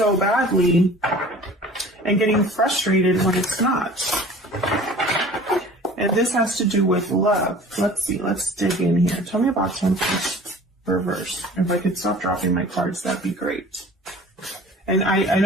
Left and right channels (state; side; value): normal; both; correlation 0.45